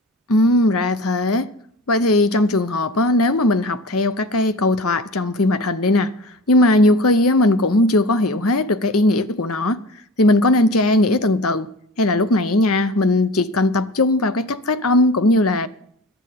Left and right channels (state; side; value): normal; both; correlation 0.37